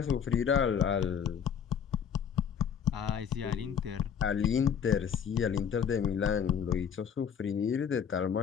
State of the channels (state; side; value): quieter; right; 7.8 dB